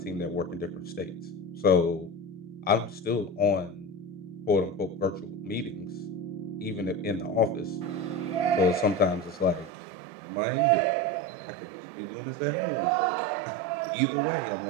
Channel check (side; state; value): left; drops out; at 9.7 s